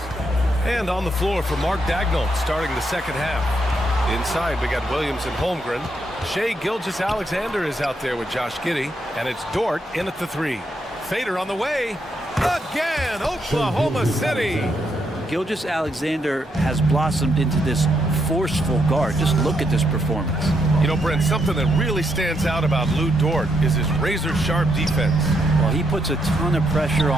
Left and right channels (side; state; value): both; normal; correlation 0.78